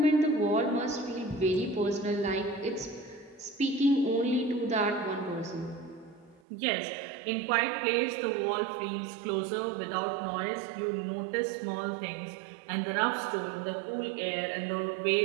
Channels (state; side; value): drops out; left; at 6.4 s